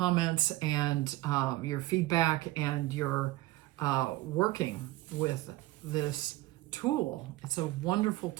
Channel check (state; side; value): quieter; left; 18.2 dB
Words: and your feedback and your working with this tool. It's a wonderful